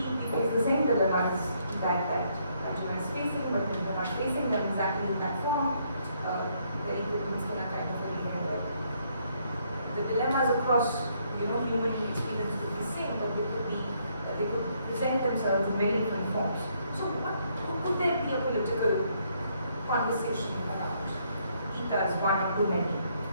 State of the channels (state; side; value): inverted; both; correlation -0.71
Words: face the same dilemmas that Arjuna is facing, but we're not facing them exactly in that form. Very good things can kind of where the dilemmas across human experience would be the same, but they could present themselves in very different forms. So could there be a political conversation around Gita as one of too many?